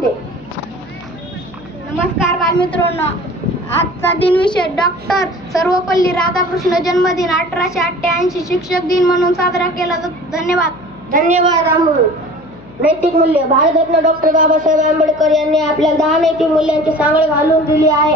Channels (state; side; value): noise; left; hum, 21 dB below the sound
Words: नमस्कार बालमित्रांनो, आजचा दिनविशेष डॉक्टर सर्वपल्ली राधाकृष्ण जन्मदिन 1888 शिक्षक दिन म्हणून साजरा केला जातो. धन्यवाद अमोल. नैतिक मूल्य. भारतरत्न डॉक्टर बाबासाहेब आंबेडकर यांनी आपल्याला 10 नैतिक मूल्यांची सांगड घालून दिली